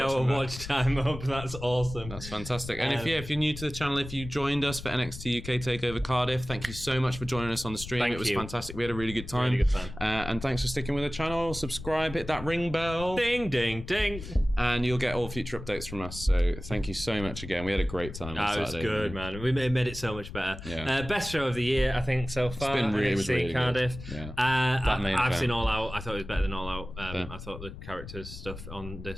our watching watch time up, that's awesome. That's fantastic. And if you're new to the channel, if you joined us for NXT UK Takeover Cardiff, thank you so much for joining us on the stream. It was fantastic. We had a really good time. Really good time. And thanks for sticking with the channel. Subscribe, hit that ring bell. Ding, ding, ding. And you'll get all future updates from us. So thank you so much again. We had a great time. It was good, man. We made it so much better. Yeah. Best show of the year, I think, so far. It's been really Cardiff. Good. Yeah. I've seen All Out. I thought it was better than All Out. I thought the characters stuff on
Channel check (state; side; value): noise; left; rumble, 11 dB below the sound